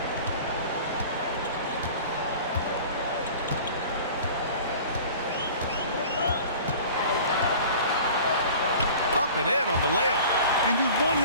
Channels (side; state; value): both; inverted; correlation -0.42